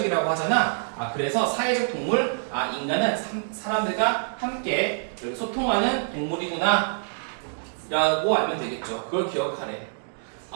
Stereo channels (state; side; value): silent; left; digital silence